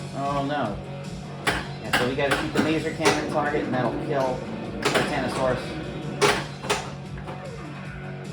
Oh no. Yeah, so we gotta shoot the laser cannon target, and that'll kill Titanosaurus.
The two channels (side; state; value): both; identical; correlation 1.00